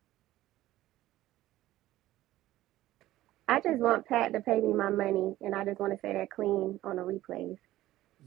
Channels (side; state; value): left; quieter; 15.4 dB